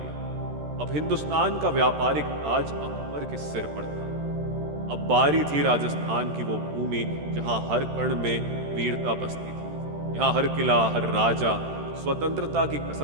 अब हिंदुस्तान का व्यापारिक ताज अकबर के सिर पर था। अब बारी थी राजस्थान की, वो भूमि जहां हर कण में वीरता बसती थी। यहाँ हर किला, हर राजा स्वतंत्रता की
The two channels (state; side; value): late; left; 13 ms